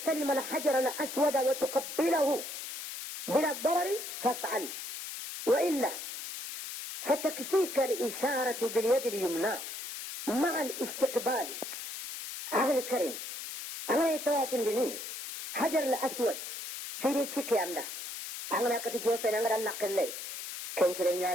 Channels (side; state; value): left; noise; hiss, 8 dB below the sound